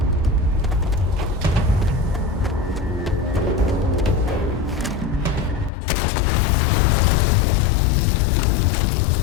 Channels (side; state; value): right; drops out; at 5.7 s